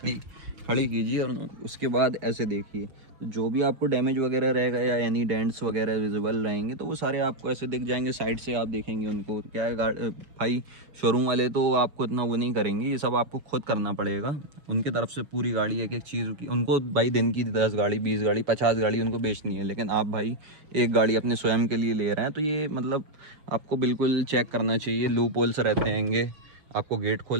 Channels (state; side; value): late; left; 6.5 ms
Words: खड़ी कीजिए और उसके बाद ऐसे देखिए, जो भी आपको डैमेज वगैरह रहेगा या यानी डेंट्स वगैरह विजिबल रहेंगे तो वो सारे आपको ऐसे दिख जाएंगे। साइड से आप देखेंगे उनको, क्या है भाई शोरूम वाले तो आपको इतना वो नहीं करेंगे, ये सब आपको खुद करना पड़ेगा। उनकी तरफ से पूरी गाड़ी एक एक चीज़ की, उनको भाई दिन की 10 गाड़ी 20 गाड़ी 50 गाड़ी उनको बेचनी है, लेकिन आप भाई एक गाड़ी अपने स्वयं के लिए ले रहे हैं, तो ये मतलब आपको बिल्कुल चेक करना चाहिए। लूप होल्स रहते हैंगे, आपको गेट खोल